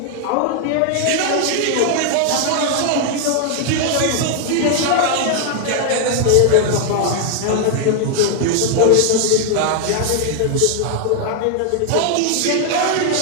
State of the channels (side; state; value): both; different; correlation 0.00